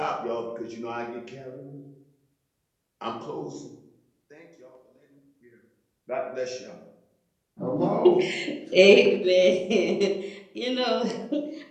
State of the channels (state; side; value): identical; both; correlation 1.00